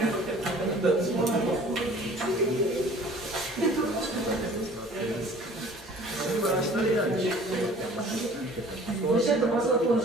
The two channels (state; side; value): normal; both; correlation 0.49